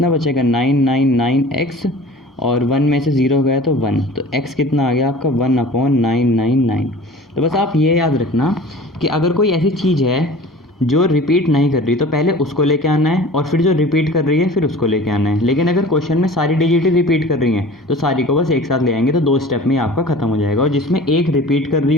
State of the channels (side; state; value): both; normal; correlation 0.42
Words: बचेगा 999x, और 1 में से 0 गया तो 1, तो x कितना आ गया आपका 1/999। तो बस आप ये याद रखना कि अगर कोई ऐसी चीज़ है जो रिपीट नहीं कर रही तो पहले उसको लेके आना है, और फिर जो रिपीट कर रही है फिर उसको लेके आना है। लेकिन अगर क्वेश्चन में सारी डिजिट ही रिपीट कर रही हैं तो सारी को बस एक साथ ले आएंगे, तो 2 स्टेप में आपका खत्म हो जाएगा। और जिसमें एक रिपीट कर रही